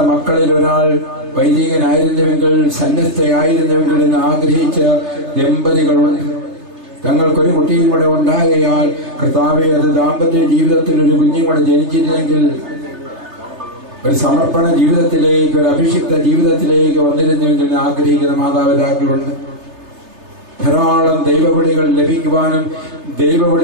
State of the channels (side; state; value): left; late; 3.3 ms